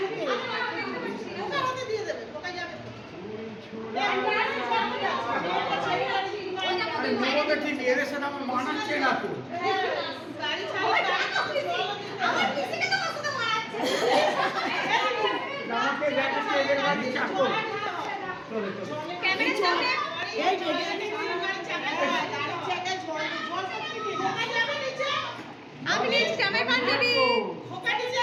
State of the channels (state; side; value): identical; both; correlation 1.00